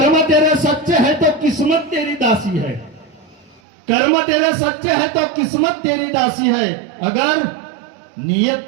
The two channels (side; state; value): left; drops out; at 3.6 s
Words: तेरे सच्चे है तो किस्मत तेरी दासी है. कर्म तेरे सच्चे है तो किस्मत तेरी दासी है. अगर